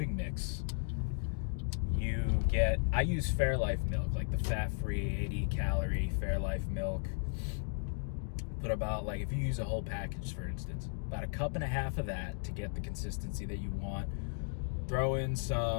mix. I use Fairlife milk, like the fat-free 80-calorie Fairlife milk. Put about, like, if you use a whole package, for instance, about a cup and a half of that to get the consistency that you want. Throw in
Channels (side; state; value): right; silent; digital silence